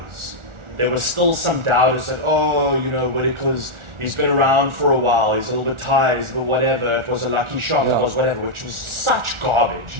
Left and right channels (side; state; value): left; late; 1.4 ms